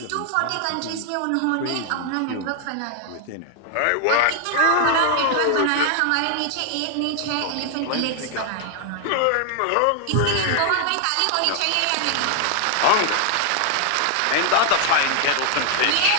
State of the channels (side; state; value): both; different; correlation 0.00